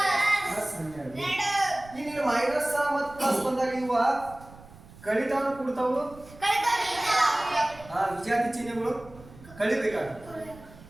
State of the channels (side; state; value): right; noise; rumble, 20 dB below the sound